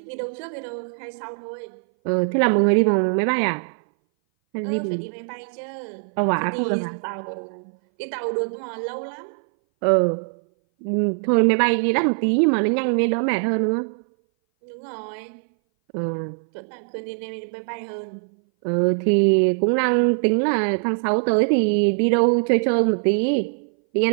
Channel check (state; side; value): silent; left; 60 dB below the other